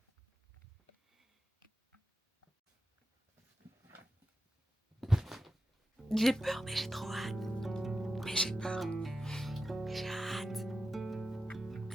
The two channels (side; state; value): both; normal; correlation 0.91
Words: J'ai peur, mais j'ai trop hâte. Mais j'ai peur. Mais j'ai hâte.